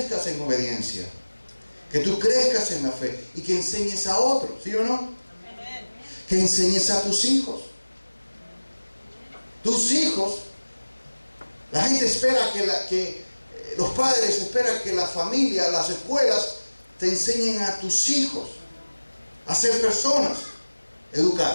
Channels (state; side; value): inverted; both; correlation -1.00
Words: en obediencia, que tú crezcas en la fe y que enseñes a otros, ¿sí o no? Que enseñes a tus hijos. Tus hijos, la gente espera que los padres esperan que la familia, las escuelas te enseñen a tus hijos a ser personas